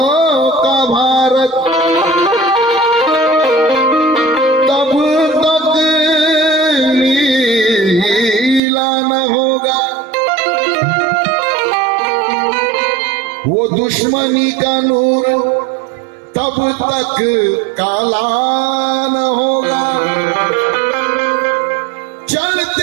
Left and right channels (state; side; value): drops out; left; at 8.6 s